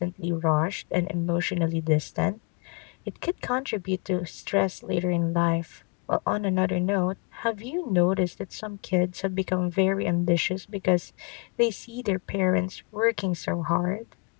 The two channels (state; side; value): quieter; right; 33.8 dB